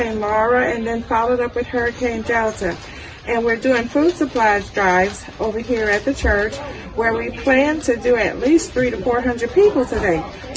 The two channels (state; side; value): identical; both; correlation 1.00